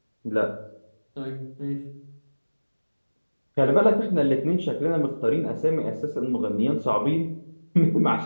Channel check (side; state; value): both; inverted; correlation -1.00